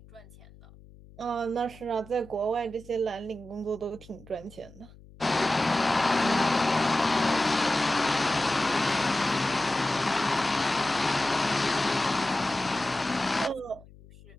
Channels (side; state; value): left; noise; hum, 22 dB below the sound